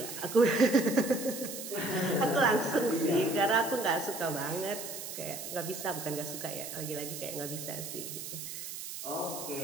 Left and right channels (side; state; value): right; noise; hiss, 8 dB below the sound